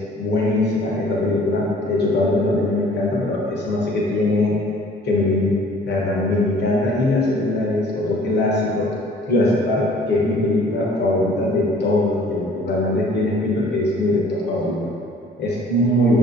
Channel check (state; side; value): normal; both; correlation 0.53